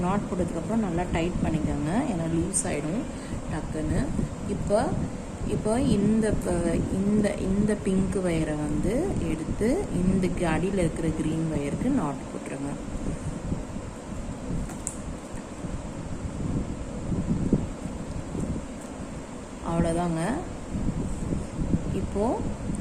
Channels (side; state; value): both; identical; correlation 1.00